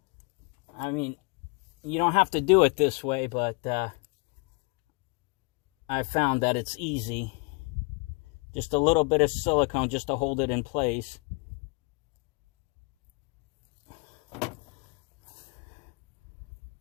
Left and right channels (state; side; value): quieter; right; 31.0 dB